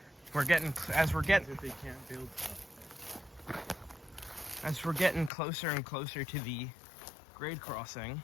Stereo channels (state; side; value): drops out; right; at 5.3 s